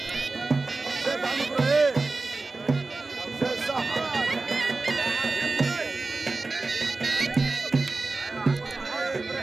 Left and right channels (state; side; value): quieter; left; 3.5 dB